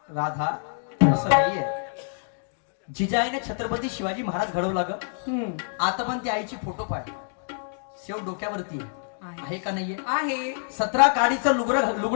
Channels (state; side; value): silent; right; digital silence